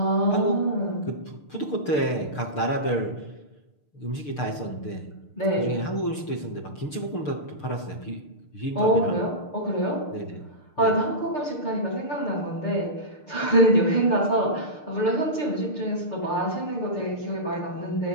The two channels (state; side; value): late; right; 6.6 ms